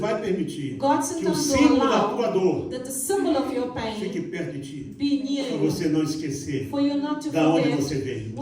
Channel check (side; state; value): both; identical; correlation 1.00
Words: permitir God que o sometimes símbolo will da tua allow dor that the symbol of your fique pain perto de ti, be near para you, você não esquecer for you not to da onde forget você veio.